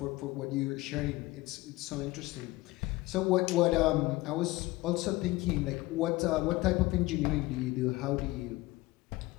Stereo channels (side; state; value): right; quieter; 20.1 dB